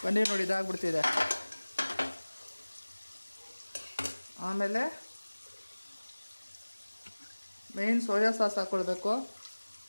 ಪನ್ನೀರ್ ನೋಡಿ ಇದಾಗ್ಬಿಡ್ತಿದೆ. ಆಮೇಲೆ ಮೇನ್ ಸೋಯಾ ಸಾಸ್ ಹಾಕ್ಕೊಳ್ಬೇಕು.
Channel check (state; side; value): inverted; both; correlation -1.00